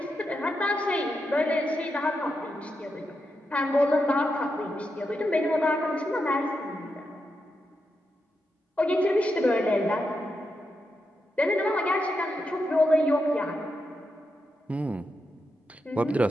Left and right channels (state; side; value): normal; both; correlation 0.85